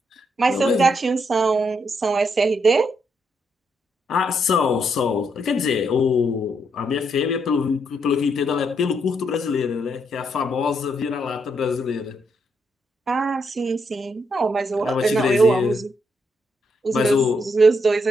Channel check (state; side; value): normal; both; correlation 0.77